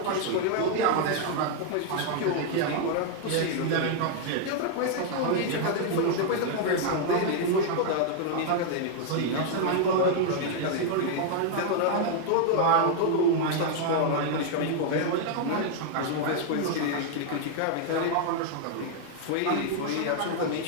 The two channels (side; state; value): both; different; correlation 0.00